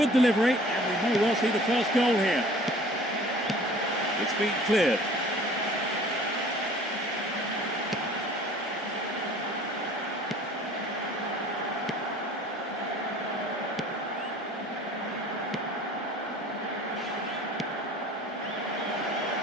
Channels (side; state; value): both; normal; correlation 0.49